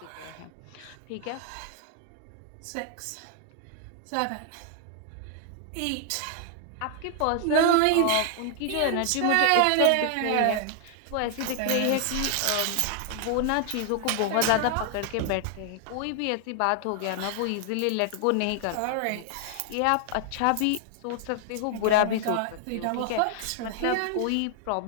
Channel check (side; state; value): both; different; correlation 0.00